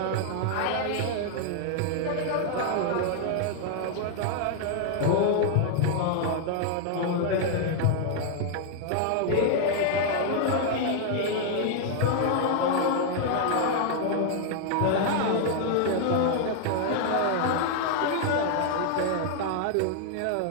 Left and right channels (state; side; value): different; both; correlation 0.00